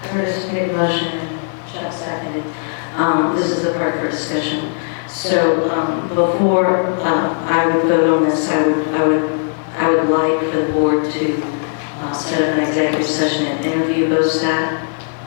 Curtis made a motion, Chuck seconded. This is the part for discussion. So before I would vote on this, I would like for the board to set up an executive session and interview Stack.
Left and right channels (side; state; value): right; silent; digital silence